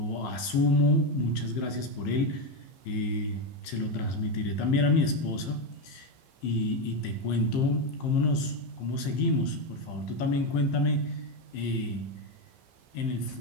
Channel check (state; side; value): late; right; 15 ms